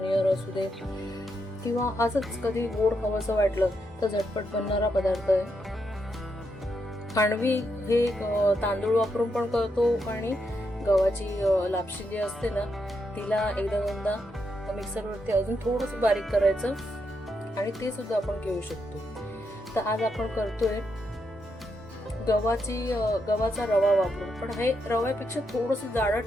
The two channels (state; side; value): normal; both; correlation 0.81